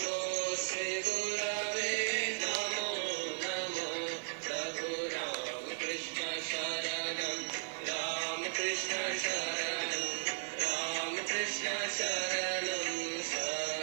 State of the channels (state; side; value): silent; left; digital silence